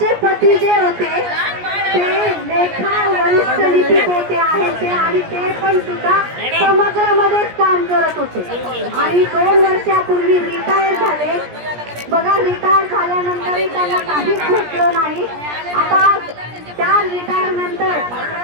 पती जे होते ते लेखा वरिष्ठ लिपिक आहेत ते, आणि ते पण सुद्धा समग्रमध्येच काम करत होते आणि 2 वर्षापूर्वी रिटायर झाले. बघा, रिटायर झाल्यानंतरही त्यांना काहीच भेटलं नाही. आता त्या रिटायरनंतर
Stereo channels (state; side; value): late; left; 17 ms